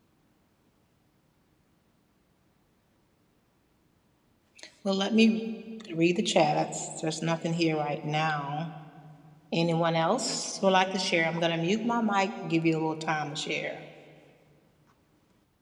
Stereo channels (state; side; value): identical; both; correlation 1.00